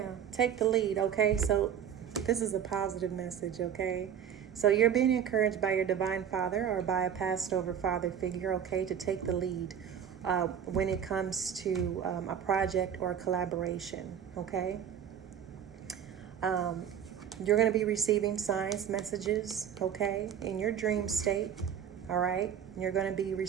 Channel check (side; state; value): left; quieter; 8.8 dB